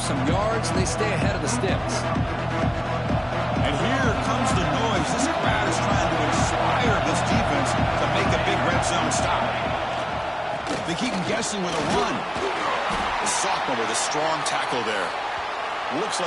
yards, and they stay ahead of the sticks. And here comes the noise. This crowd is trying to inspire this defense to make a big red zone stop. They keep him guessing with a run. The sophomore with a strong tackle there. Looks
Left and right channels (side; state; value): both; identical; correlation 1.00